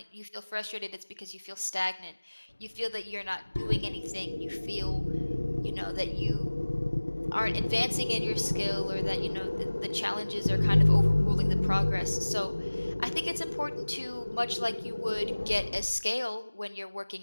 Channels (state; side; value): inverted; both; correlation -1.00